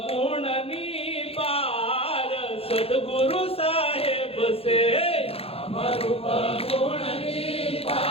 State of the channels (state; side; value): late; right; 0.28 ms